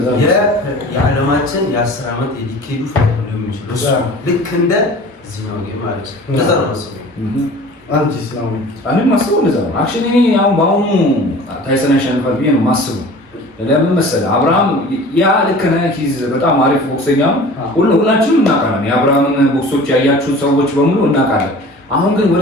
የዓለማችን የ10 ዓመት የዲኬዱ ፋይት ነው የሚችለው ልክ እንደ እዚህ ነው ማለት ነው እንደዛ ነው ማስበው አንቺስ ነው እኔ ማስበው እንደዛ ነው አክቹሊ እኔ አሁን በአሁኑ ታይሰን ያሸንፋል ብዬ ነው ማስበው ለምን መሰለህ አብርሃም ያ ልክ ነህ ሂዝ በጣም አሪፍ ቦክሰኛ ሁላችንም እናውቃለን የአብርሃምን ቦክሶች ያያችሁ ሰዎች በሙሉ እናውቃለን አሁን ግን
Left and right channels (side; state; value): both; normal; correlation 0.43